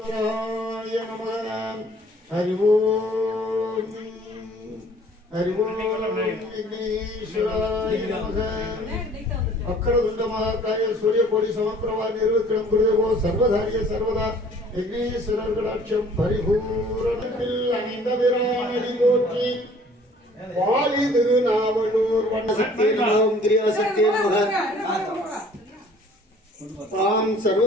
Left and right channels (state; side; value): normal; both; correlation 0.54